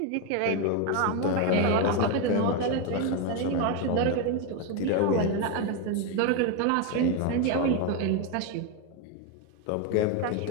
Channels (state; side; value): different; both; correlation 0.02